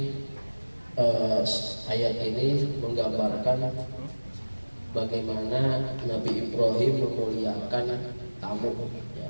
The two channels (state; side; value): inverted; both; correlation -1.00